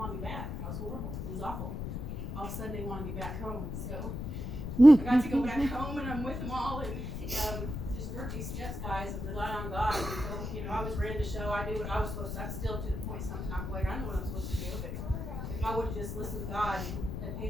me back. I was horrible. It was awful. All of a sudden, they wanted me back home. So I got to go back home, and I'm with them all, and just work these steps, guys, and rely on God. So, I was ready to show. I knew what I was supposed to. I'm still to the point sometimes like I know what I'm supposed to do, but if I would have just listened to God and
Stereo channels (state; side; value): noise; left; rumble, 5 dB below the sound